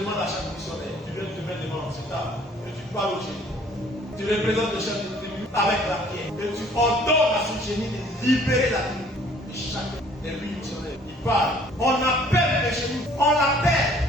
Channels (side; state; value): both; normal; correlation 0.56